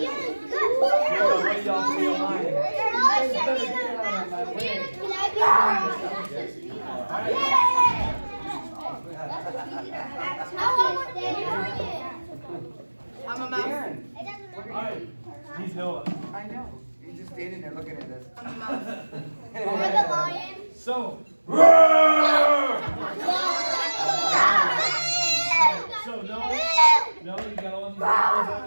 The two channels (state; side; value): inverted; both; correlation -1.00